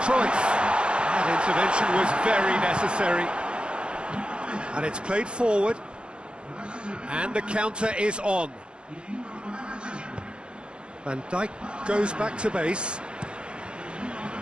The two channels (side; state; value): left; late; 0.055 ms